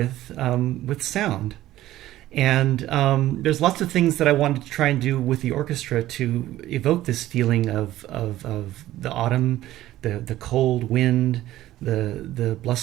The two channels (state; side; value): quieter; left; 14.7 dB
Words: sound. And there's lots of things that I wanted to try and do with the orchestra to evoke this feeling of the autumn, the cold wind, the